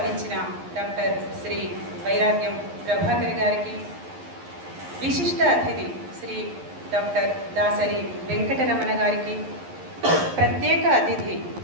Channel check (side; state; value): left; late; 11 ms